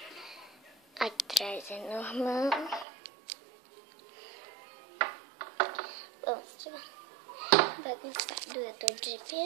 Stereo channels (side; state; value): left; drops out; at 2.9 s